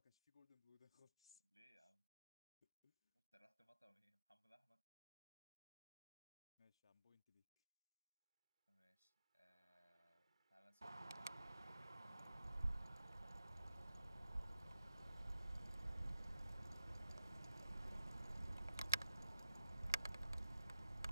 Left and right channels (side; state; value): both; inverted; correlation -0.87